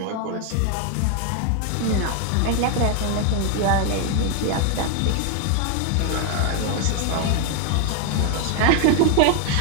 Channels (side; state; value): both; different; correlation 0.01